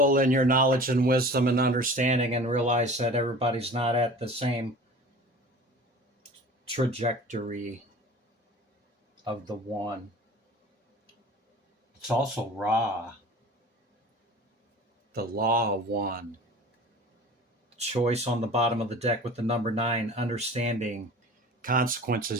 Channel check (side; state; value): both; normal; correlation 0.41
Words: in your knowledge and wisdom and understanding, and realize that everybody's not at the same trajectory of the one. It's also Ra, the law of one. Choice on the bottom of the deck with the number 9, understanding